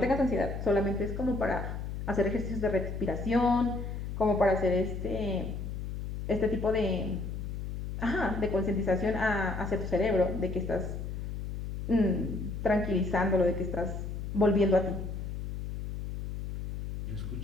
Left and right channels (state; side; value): noise; left; hum, 6 dB below the sound